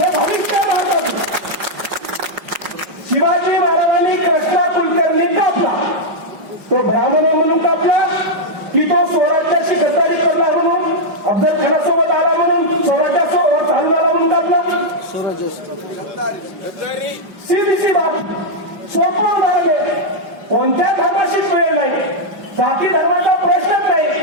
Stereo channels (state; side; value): late; left; 5.4 ms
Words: भविष्य भारताचं. शिवाजी महाराजांनी कृष्णा कुलकर्णी कापला, तो ब्राह्मण म्हणून कापला की तो स्वराज्याशी गद्दारी करणार म्हणून, अफजल खानासोबत आला म्हणून स्वराज्यासोबत चालू झाला म्हणून कापला? सीधी बाब, सोपं उदाहरण आहे. कोणत्या धर्माशी वेळ नाही, जाती धर्माचा प्रश्नच नाही.